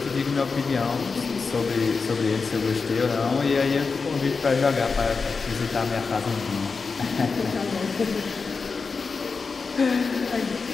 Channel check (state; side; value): quieter; right; 4.7 dB